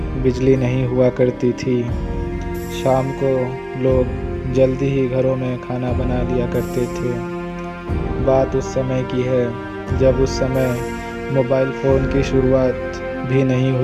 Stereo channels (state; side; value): identical; both; correlation 1.00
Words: बिजली नहीं हुआ करती थी। शाम को लोग जल्दी ही घरों में खाना बना लिया करते थे। बात उस समय की है जब उस समय मोबाइल फ़ोन की शुरुआत भी नहीं